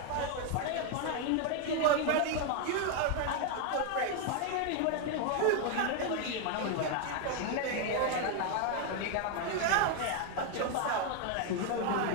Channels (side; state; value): both; different; correlation 0.01